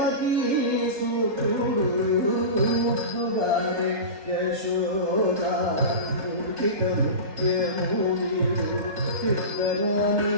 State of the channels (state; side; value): late; left; 3.3 ms